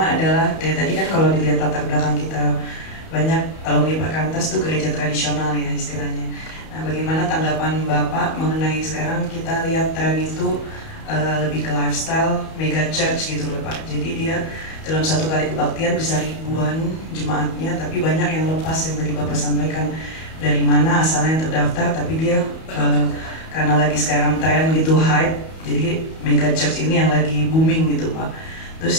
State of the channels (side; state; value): right; late; 31 ms